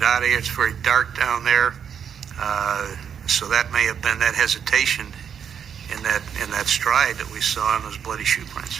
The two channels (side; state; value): left; quieter; 7.9 dB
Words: out of here, it's very dark down there. So that may have been that hesitation in that stride that we saw in those bloody shoe